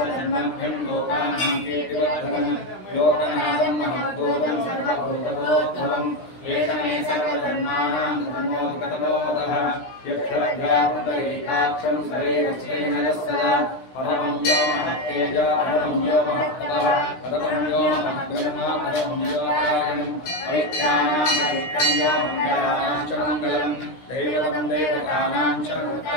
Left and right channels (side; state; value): right; late; 16 ms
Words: लोकानां कीर्तिवर्धनं लोकनाथं महद्भूतं सर्वभूतभोद्भवम् एष मे सर्वधर्माणां धर्मोत्कटो मतः यक्षरभ्यापुण्डरीकाक्षं शरीरस्येन सदा परमं यो महत्तेज परमं यो महत्तपः परमं यो महद्ब्रह्म परमं यो कारणं परित्राणां परित्रं यो मङ्गलानां च मङ्गलं दैवतं देवतानां च